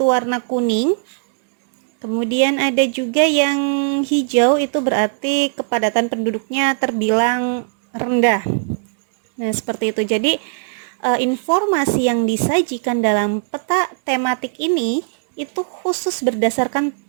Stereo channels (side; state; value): left; silent; 67 dB below the other